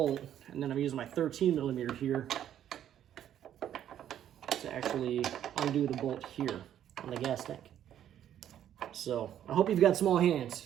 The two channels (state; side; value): quieter; left; 10.6 dB